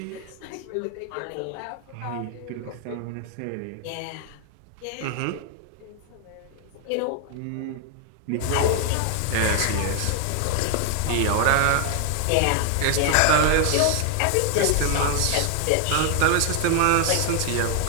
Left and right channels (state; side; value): different; both; correlation 0.00